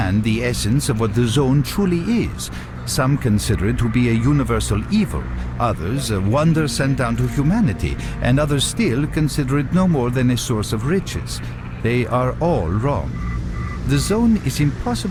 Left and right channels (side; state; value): both; identical; correlation 1.00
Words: the essence of what the zone truly is. Some consider it to be a universal evil, others a wonder sent down to humanity, and others still consider it no more than a source of riches. They are all wrong. The zone is